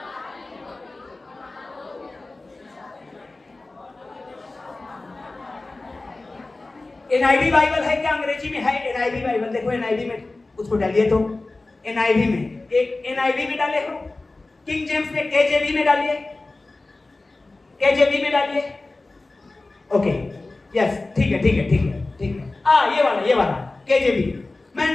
एनआईवी बाइबल है क्या? अंग्रेजी में है एनआईवी बाइबल। देखो एनआईवी में उसको डालिए, तो एनआईवी में, एक एनआईवी में डाले हो, किंग जेम्स में केजेवी में डालिए, केजेवी में डालिए। ओके, यस, ठीक है, ठीक है, ठीक है, ठीक है। ये वाला केजेवी। मैं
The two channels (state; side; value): quieter; right; 3.2 dB